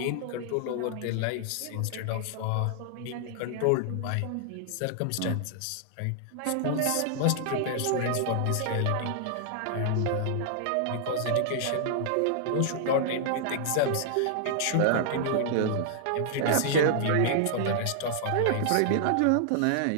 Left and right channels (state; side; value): different; both; correlation -0.01